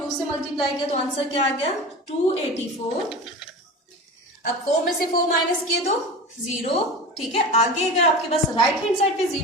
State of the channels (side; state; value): both; normal; correlation 0.31